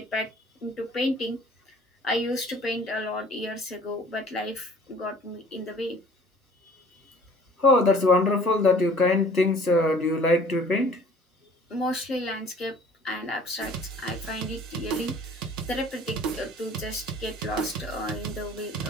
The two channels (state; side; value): normal; both; correlation 0.52